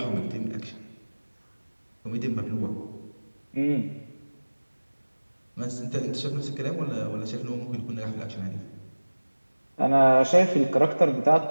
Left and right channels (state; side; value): inverted; both; correlation -1.00